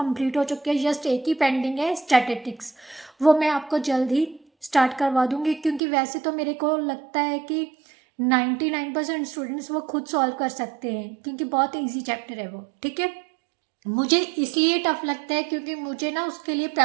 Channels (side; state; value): left; drops out; at 5.8 s